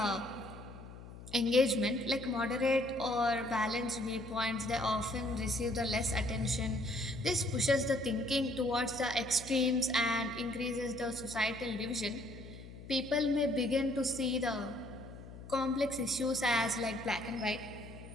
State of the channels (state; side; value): noise; left; hum, 15 dB below the sound